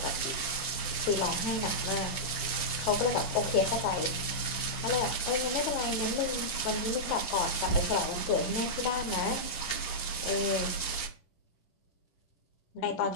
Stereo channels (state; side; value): late; right; 10 ms